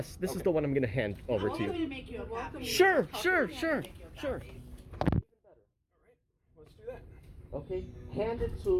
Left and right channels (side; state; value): both; identical; correlation 1.00